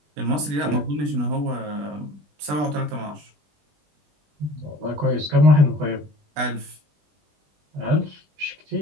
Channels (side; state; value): left; late; 20 ms